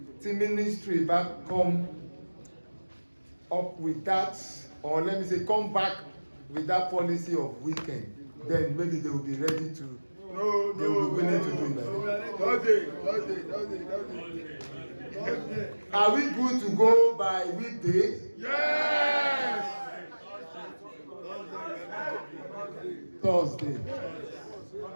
the ministry back come up with that, or let me say come back with that policy of weekend, then maybe they will be ready to they will be willing to do it. Are we good to go by weekday? Yes. Thursday.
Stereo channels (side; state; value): both; inverted; correlation -1.00